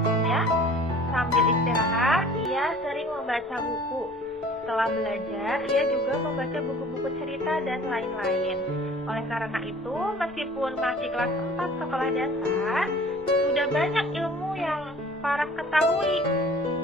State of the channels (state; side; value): normal; both; correlation 0.48